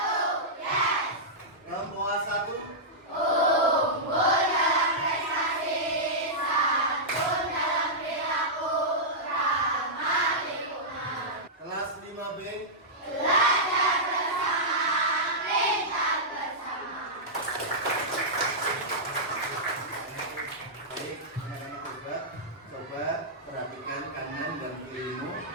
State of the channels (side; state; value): both; normal; correlation -0.12